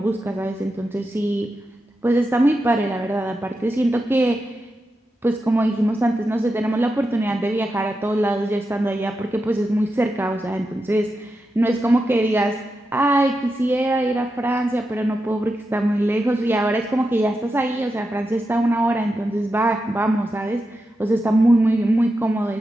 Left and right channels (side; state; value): both; normal; correlation 0.88